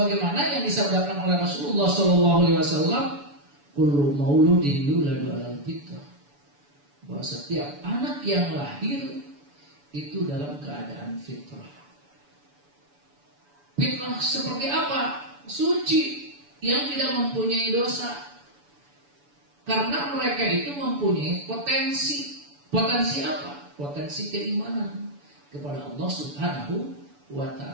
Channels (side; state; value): left; late; 7.0 ms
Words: yang disabdakan oleh Rasulullah SAW, kullu mauludin yuladu alal fitrah, bahwa setiap anak yang lahir itu dalam keadaan fitrah. Fitrah seperti apa? Suci, yang tidak mempunyai dosa. Karena mereka itu mempunyai potensi. Potensi apa? Potensi keimanan kepada Allah subhanahu wa